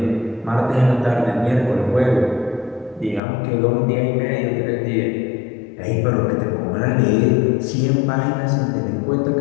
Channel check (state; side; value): drops out; right; at 3.2 s